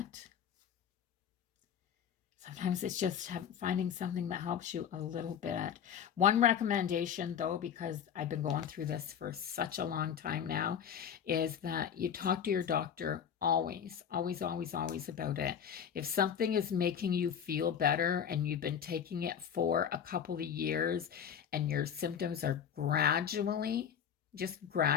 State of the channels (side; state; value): right; quieter; 8.3 dB